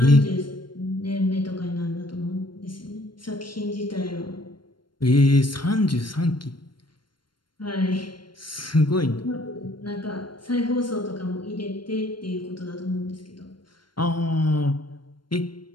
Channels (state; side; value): late; right; 0.72 ms